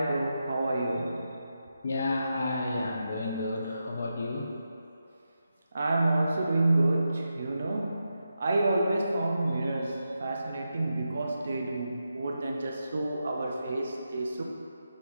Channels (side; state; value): both; inverted; correlation -0.88